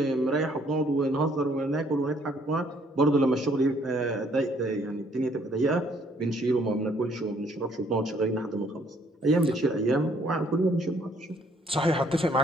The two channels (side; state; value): both; normal; correlation 0.64